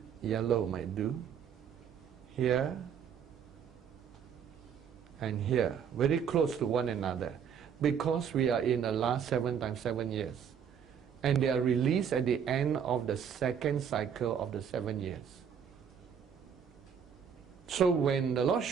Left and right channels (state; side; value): quieter; left; 7.7 dB